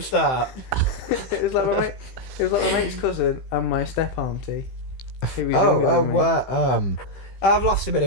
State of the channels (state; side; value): late; right; 15 ms